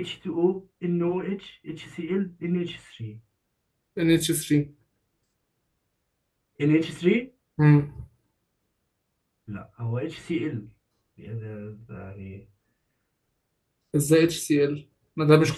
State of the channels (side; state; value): both; identical; correlation 1.00